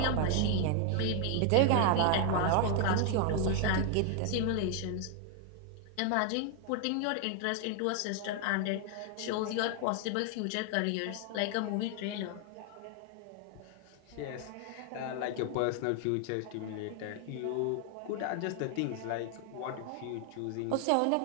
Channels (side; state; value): both; different; correlation 0.00